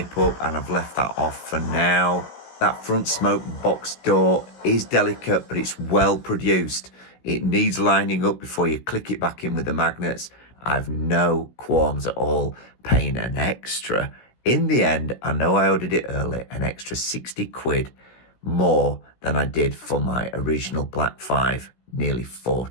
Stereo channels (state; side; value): late; right; 16 ms